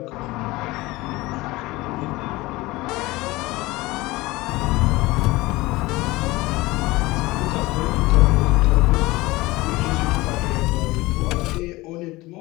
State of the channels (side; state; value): right; quieter; 20.5 dB